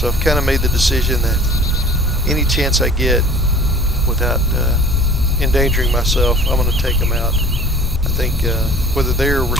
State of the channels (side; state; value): both; normal; correlation 0.47